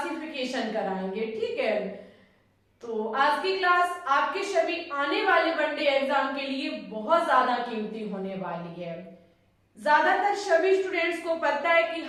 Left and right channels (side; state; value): both; identical; correlation 1.00